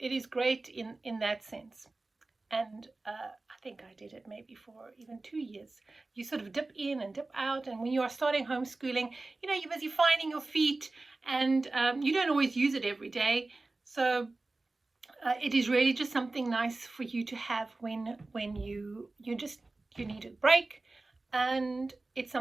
great in that sense. And I think I did it maybe for even 2 years. You sort of dip in and dip out, and when you are starting homeschooling, you're busy finding your feet, and you don't always use it every day. So it is really just something nice for you to have when you need a break, and it's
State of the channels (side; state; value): left; quieter; 3.2 dB